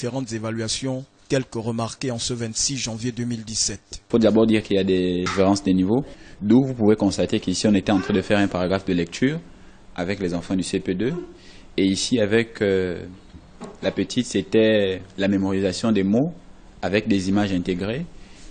évaluations, quelques remarquées en ce 26 janvier 2017. Il faut d'abord dire qu'il y a des différences des niveaux, d'où vous pouvez constater qu'ici on était en train de faire un paragraphe de lecture avec les enfants du CP2, et ici avec la petite c'était la mémorisation des mots avec des images intégrées,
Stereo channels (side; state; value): both; identical; correlation 1.00